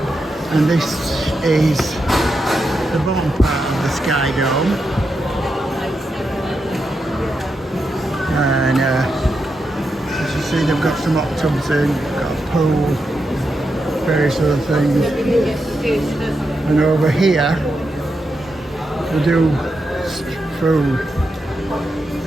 this is the bottom part of the Sky Dome. And as you see, they've got some hot tubs in, got a pool, various other things. And over here, we do food.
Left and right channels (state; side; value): normal; both; correlation 0.86